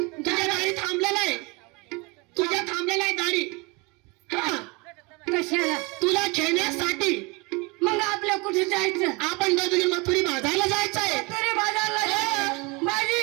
गाडी थांबलेला आहे तुझ्या थांबलेला आहे गाडी हा कशाला तुला खेळण्यासाठी मग आपल्या कुठे जायचं आपण दोघे मथुरी बाजारला जायचं आहे तरी बाजारला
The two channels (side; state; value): left; quieter; 27.5 dB